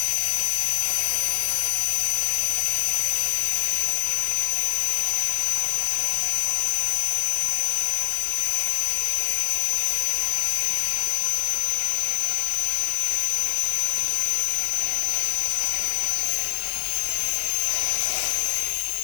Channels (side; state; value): right; silent; digital silence